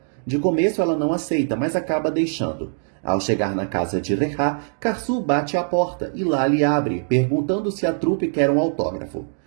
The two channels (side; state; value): left; silent; digital silence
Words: De começo ela não aceita, mas acaba deixando. Ao chegar na casa de Rehá, Karsu bate à porta e Lali abre, perguntando se a trupe quer um autógrafo.